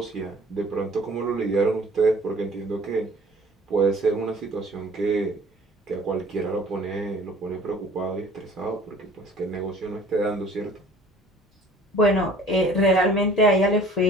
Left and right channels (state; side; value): normal; both; correlation 0.51